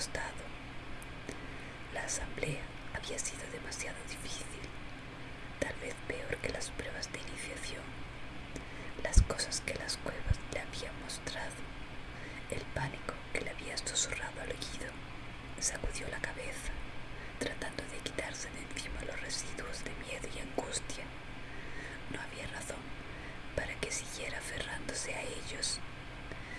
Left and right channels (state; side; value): identical; both; correlation 1.00